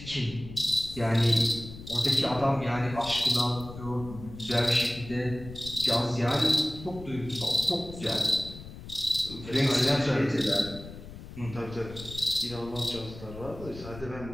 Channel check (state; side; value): noise; left; rumble, 14 dB below the sound